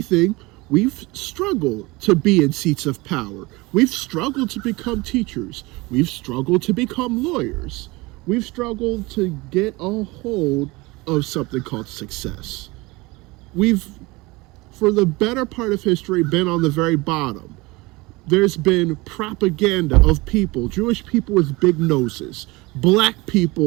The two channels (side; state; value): left; quieter; 23.1 dB